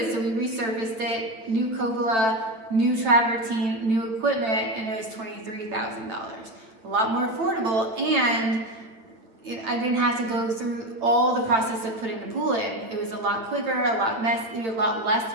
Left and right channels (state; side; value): late; left; 9.0 ms